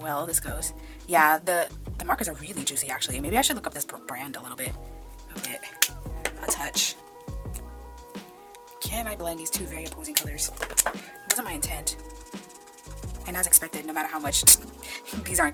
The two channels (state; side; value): identical; both; correlation 1.00